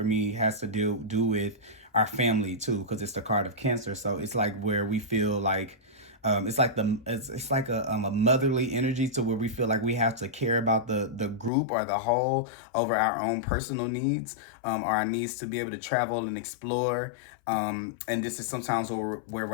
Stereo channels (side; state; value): right; drops out; at 11.5 s